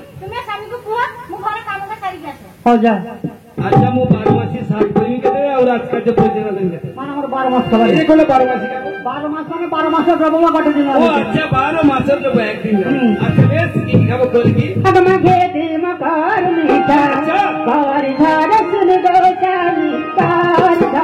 ତୁମେ ସ୍ୱାମୀକୁ କୁହ ମୁଁ ଘର କାମଟା ସାରିକି ଆସେ। ହଉ ଯା ଆଚ୍ଛା ମୁଁ 12 ମାସି ସାତ କରିବି କେତେ ଆଉ ରାଜକାର୍ଯ୍ୟ ପଇସା ଦେବି କେତେ ମାନେ ଆମର 12 ମାସ ଖବର ଏ କୋଲେ 12 ମାସି কাম 12 মাস মানে 12 মাসের প্রবল কাটে দিন ও আচ্ছা 12 মাসের জন্য একদিন আচ্ছা বেশ কি খাবো করি কি अब मगे दे मकार मीठा कार धारे सुन दो चाली कार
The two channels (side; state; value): both; identical; correlation 1.00